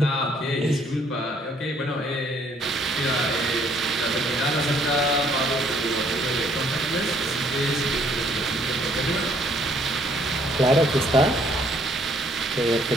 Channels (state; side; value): normal; both; correlation 0.64